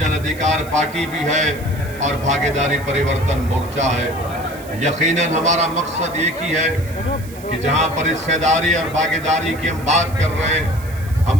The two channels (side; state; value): right; noise; hiss, 19 dB below the sound